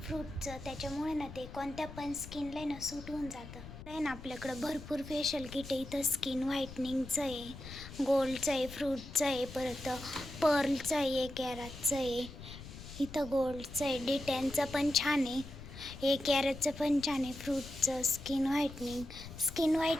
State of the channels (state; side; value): noise; left; rumble, 13 dB below the sound